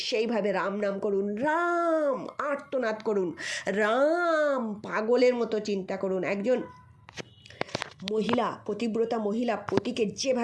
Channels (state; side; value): identical; both; correlation 1.00